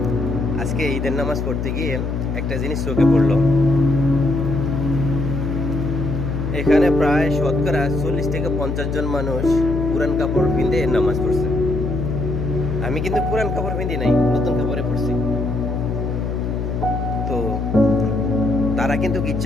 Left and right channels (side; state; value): left; noise; hum, 2 dB below the sound